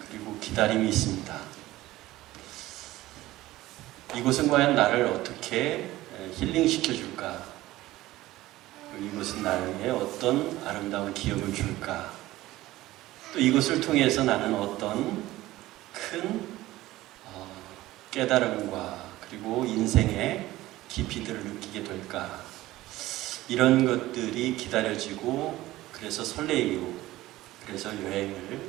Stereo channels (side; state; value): left; quieter; 16.8 dB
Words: 기다림이 있습니다. 이곳은 과연 나를 어떻게 힐링시켜 줄까? 이곳은 나에게 어떤 아름다운 기억을 줄까? 또 이곳을 통해서 나는 어떤 큰 깨달음과 그리고 인생의 깊이들을 느끼게 될까? 이런 것들이 기다려지고 그래서 설레이고 그래서